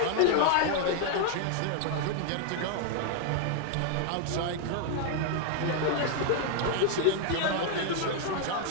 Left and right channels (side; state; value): both; different; correlation 0.00